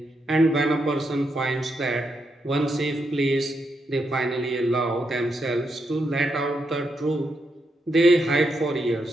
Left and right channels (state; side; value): normal; both; correlation 0.81